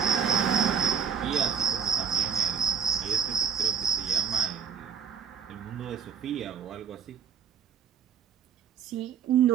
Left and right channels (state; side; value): quieter; left; 7.2 dB